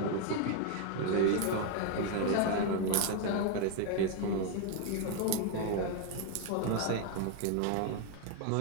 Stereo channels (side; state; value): both; different; correlation 0.01